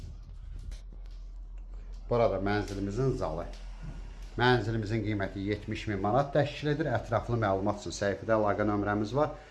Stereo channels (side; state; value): both; identical; correlation 1.00